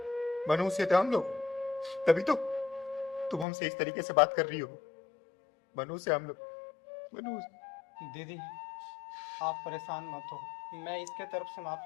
मनुष्य थे हम लोग, तभी तो तुम हमसे इस तरीके से बात कर रही हो। मनुष्य हम लोग, मनुष्य। दीदी, आप परेशान मत हो, मैं इसके तरफ से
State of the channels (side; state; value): right; drops out; at 3.5 s